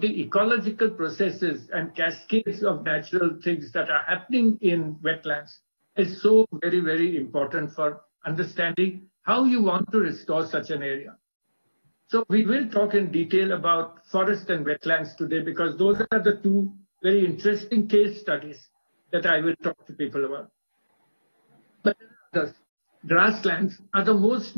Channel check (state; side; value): inverted; both; correlation -1.00